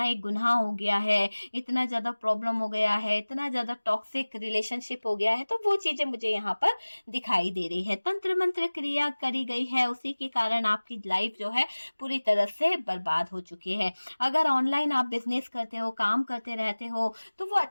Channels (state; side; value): inverted; both; correlation -1.00